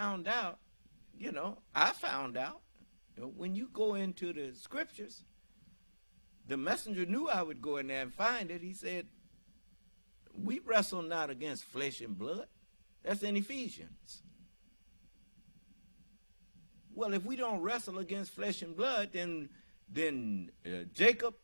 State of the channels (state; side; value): inverted; both; correlation -1.00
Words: out, I found out, when you go into the scriptures, the messenger knew I would go in there and find it. He said, we wrestle not against flesh and blood. That's in Ephesians. Well, if we don't wrestle against flesh and blood, then Jacob